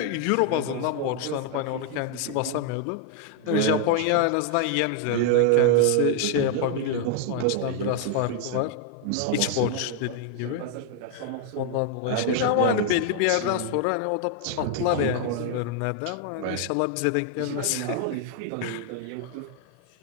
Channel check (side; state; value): both; different; correlation 0.00